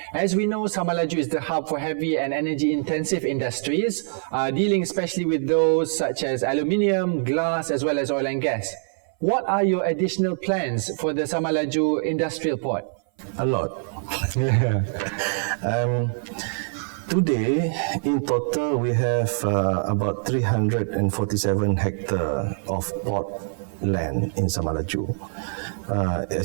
As we know, Samalaju is the hub for heavy and energy-intensive industries, dealing especially with those such as aluminium, glass, as well as oil and gas. What are your additional plans for the Samalaju Industrial Port? A lot. Today, in total, we have about 347 hectares of port land in Samalaju.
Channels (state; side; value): silent; left; 58 dB below the other